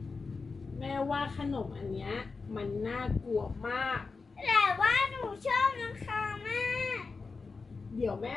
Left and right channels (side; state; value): right; quieter; 4.4 dB